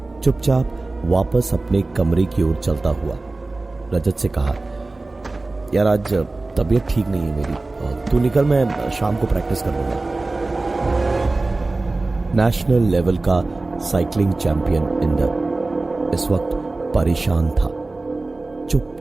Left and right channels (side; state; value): left; quieter; 3.2 dB